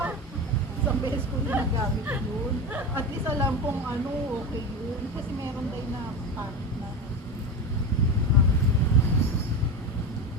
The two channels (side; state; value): both; normal; correlation 0.22